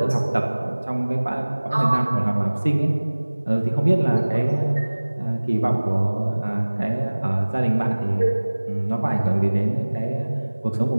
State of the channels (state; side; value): inverted; both; correlation -1.00